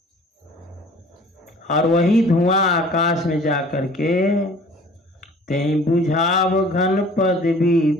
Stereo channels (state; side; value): normal; both; correlation 0.49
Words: और वही धुआं आकाश में जा करके तें बुझाव घन पद भी